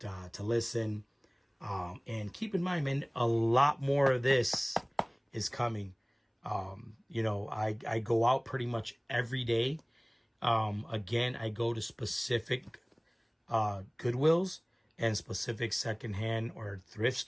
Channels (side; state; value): both; identical; correlation 1.00